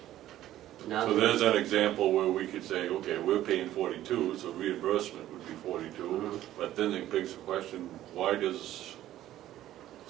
Now So there's an example where we could say, okay, we're paying 42, so reimbursement would be 42. Mhm. But then it begs the question, why does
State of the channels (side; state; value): left; quieter; 13.4 dB